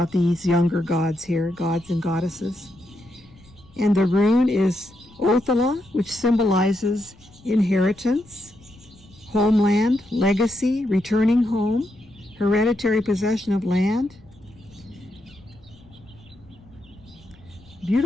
these younger gods here, gods and goddesses. And the rune is Othala, which symbolizes inheritance, homeland, legacy, returning home, hereditary possession of land.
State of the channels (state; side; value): noise; left; rumble, 26 dB below the sound